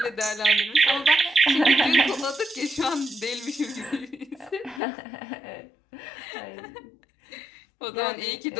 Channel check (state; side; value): drops out; right; at 4.8 s